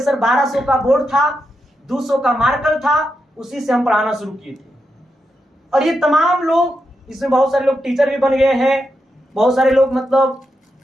1200 का बोर्ड था, 200 का मार्कर था, उसी से हम पढ़ाना शुरू किए थे। और ये तमाम लोग, इसमें बहुत सारे लोग टीचर भी बन गए हैं, बहुत सारे लोग मतलब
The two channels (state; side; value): normal; both; correlation 0.85